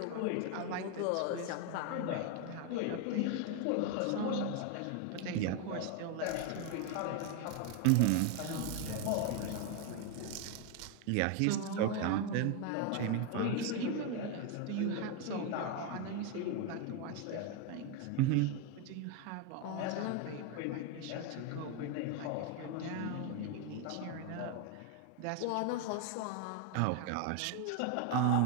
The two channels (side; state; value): both; different; correlation 0.01